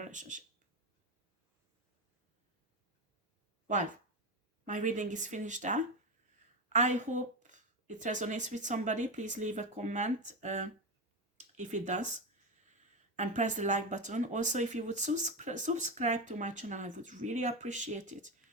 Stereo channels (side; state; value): both; normal; correlation 0.14